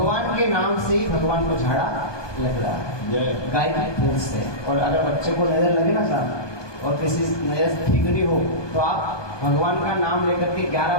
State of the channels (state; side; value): late; right; 1.2 ms